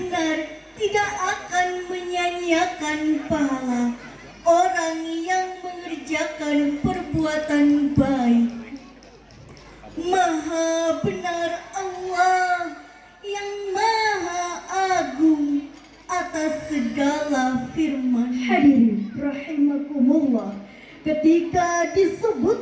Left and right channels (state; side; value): identical; both; correlation 1.00